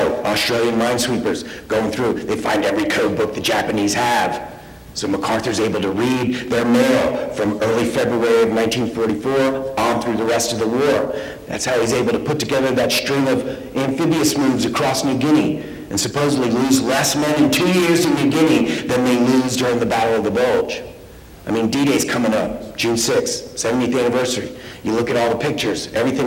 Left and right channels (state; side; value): identical; both; correlation 1.00